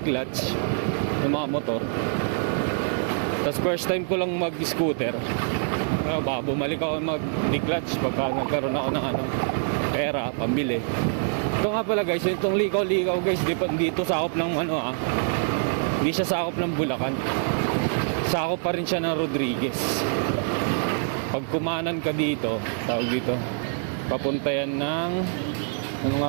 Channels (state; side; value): silent; left; 61 dB below the other